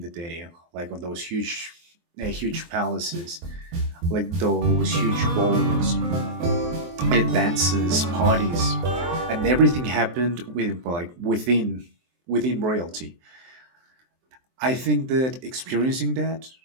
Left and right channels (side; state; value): left; late; 23 ms